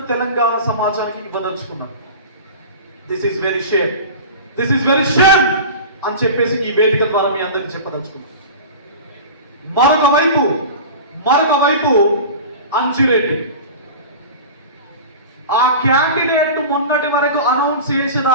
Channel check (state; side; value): inverted; both; correlation -0.33